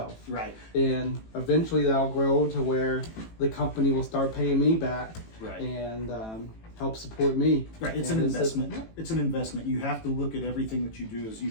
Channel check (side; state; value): right; late; 18 ms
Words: Right. And eventually that'll grow to where the company will start paying me back. Right. And help support me. Right. It's an investment. It's an investment. You have to look at everything that you do as